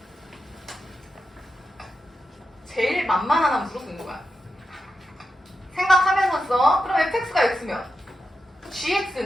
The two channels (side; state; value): both; normal; correlation 0.89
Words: 제일 만만한 함수로 쓰는 거야. 생각하면서 써. 그럼 fx가 x면